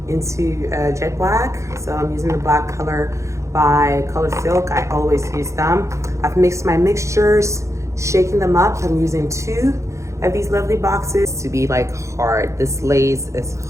into jet black. So I'm using the black color by Color Silk. I always use them. I've mixed my mixtures, shaking them up. I'm using 2 of these lovely boxes to be like hard. This lace is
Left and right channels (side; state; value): left; late; 0.14 ms